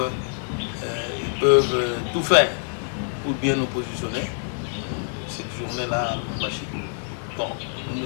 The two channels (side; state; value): right; silent; digital silence